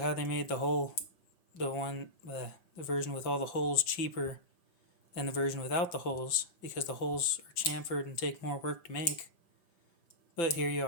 they made the hole. The version with all the holes cheaper than the version without the holes because the holes are chamfered and take more work to make. But here you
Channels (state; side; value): late; right; 5.9 ms